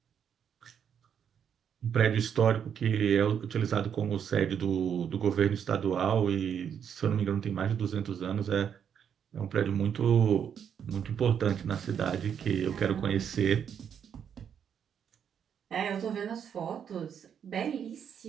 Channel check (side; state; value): left; quieter; 8.1 dB